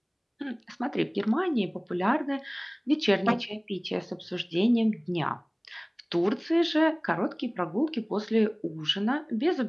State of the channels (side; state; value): both; identical; correlation 1.00